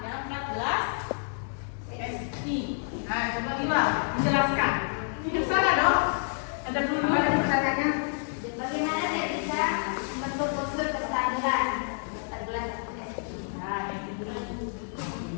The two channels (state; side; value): silent; right; 59 dB below the other